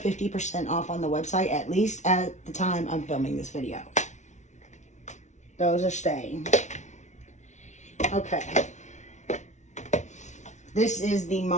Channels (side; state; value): right; late; 0.34 ms